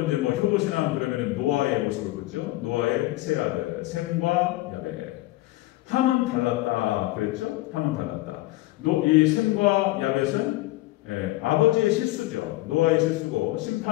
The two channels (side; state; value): right; quieter; 18.3 dB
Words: 이제 효도신앙 그러면 노아의 모습을 보죠. 노아의 세 아들 셈과 야벳. 함은 달랐다 그랬죠. 함은 달랐다. 이 셈과 야벳은 아버지의 실수죠. 노아의 실수고